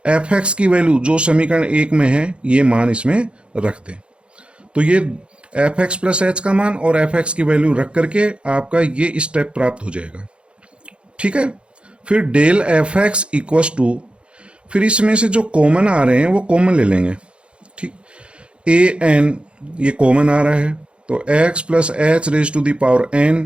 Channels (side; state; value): left; late; 0.057 ms